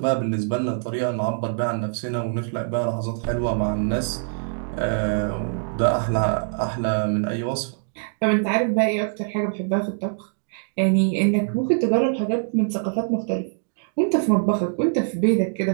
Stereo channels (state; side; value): silent; left; digital silence